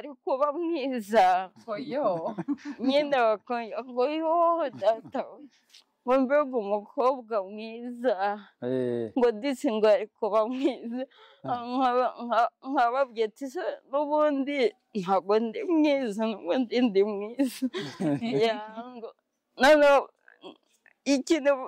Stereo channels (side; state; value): both; identical; correlation 1.00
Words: kuba mwiza, nyine ngo yo data ngo mbega umukobwa mwiza ngo disi ngo ari kuba mwiza nkababwiye ati se n'ubundi ntabwo ndi mwiza n'ubundi ndi mwiza noneho ikintu